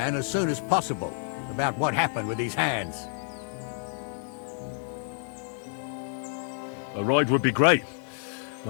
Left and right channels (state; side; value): silent; right; 59 dB below the other